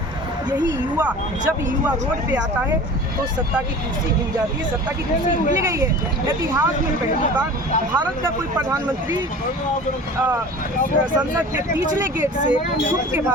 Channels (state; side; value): normal; both; correlation 0.40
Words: यही युवा, जब युवा रोड पे आता है तो सत्ता की कुर्सी हिल जाती है, सत्ता की कुर्सी मिल गई है। इतिहास में पहली बार भारत का कोई प्रधानमंत्री संसद के पिछले गेट से छुप के